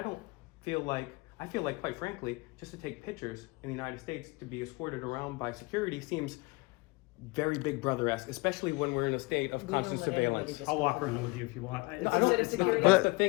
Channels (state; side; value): quieter; right; 25.5 dB